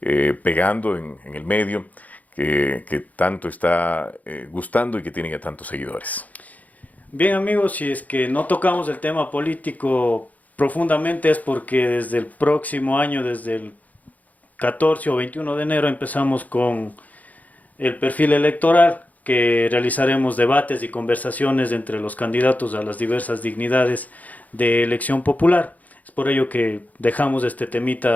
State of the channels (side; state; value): right; late; 0.077 ms